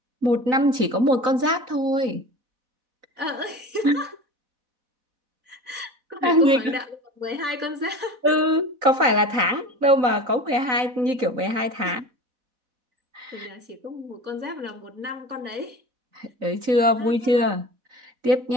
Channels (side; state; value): left; late; 3.9 ms